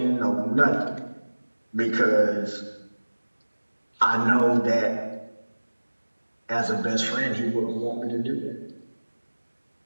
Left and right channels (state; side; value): inverted; both; correlation -1.00